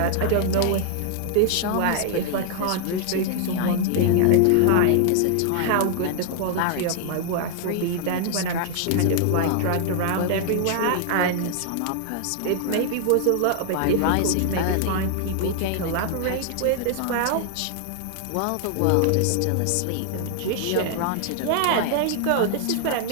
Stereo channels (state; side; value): different; both; correlation 0.00